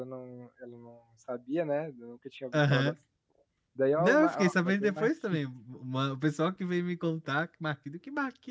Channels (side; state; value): both; identical; correlation 1.00